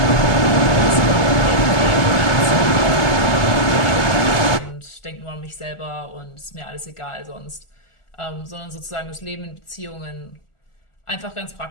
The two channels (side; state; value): right; late; 1.4 ms